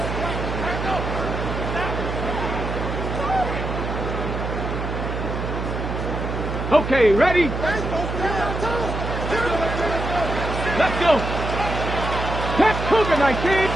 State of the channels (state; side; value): noise; right; hum, 4 dB below the sound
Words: Okay, ready? Let's go. Catch Cougar 19.